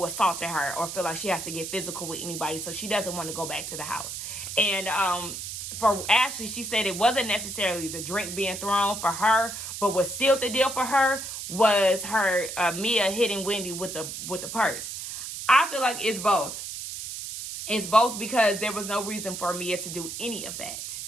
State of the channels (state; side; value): noise; right; hiss, 7 dB below the sound